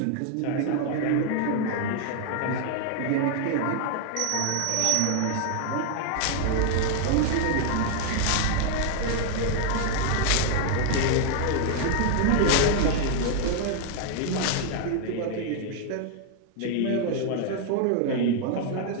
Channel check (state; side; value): different; both; correlation 0.00